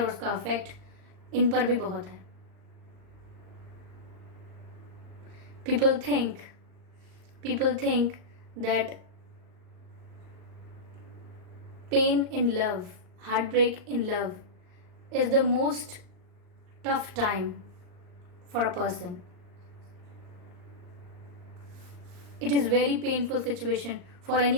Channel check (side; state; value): left; late; 39 ms